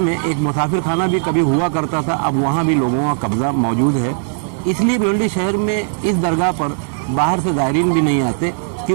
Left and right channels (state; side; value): silent; left; digital silence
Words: एक मुसाफिर खाना भी कभी हुआ करता था, अब वहाँ भी लोगों का कब्ज़ा मौजूद है। इसलिए भिवंडी शहर में इस दरगाह पर बाहर से ज़ायरीन भी नहीं आते